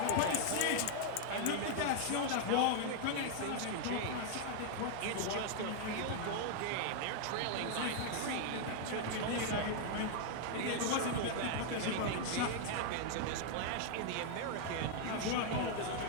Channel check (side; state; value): both; different; correlation 0.00